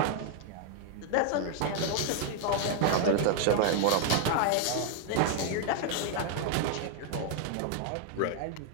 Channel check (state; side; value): different; both; correlation 0.00